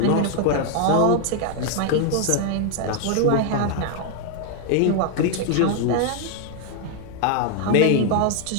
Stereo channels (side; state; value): both; different; correlation 0.00